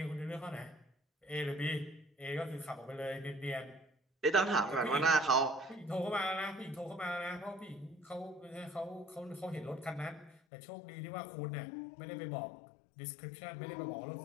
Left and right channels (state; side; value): drops out; right; at 10.4 s